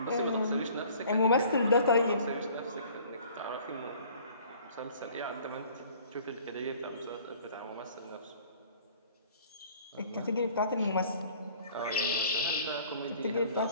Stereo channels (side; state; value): both; inverted; correlation -0.52